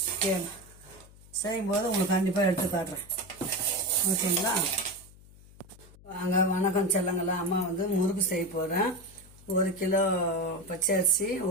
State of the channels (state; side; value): noise; left; hum, 22 dB below the sound